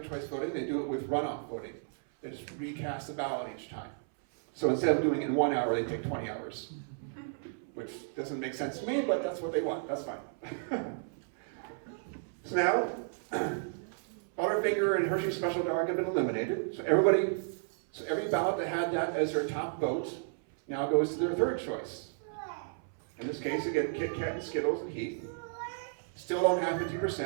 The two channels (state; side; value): silent; left; 56 dB below the other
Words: choice voting, they do it with runoff voting. They just recast the ballot each time. So instead of doing it in 1 hour, they take 20 hours. Which doesn't make sense to me, but that's what they want, that's fine. So now, Butterfinger and Hershey Special Dark have been eliminated. So every ballot that had that as their top vote now goes to their third choice. In this case, again, Kit Kat and Skittles and Heath. Still don't have